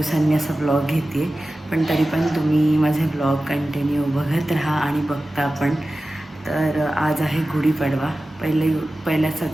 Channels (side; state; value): both; normal; correlation 0.95